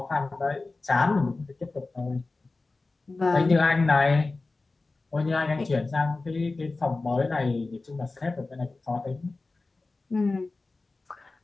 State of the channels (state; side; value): quieter; right; 3.5 dB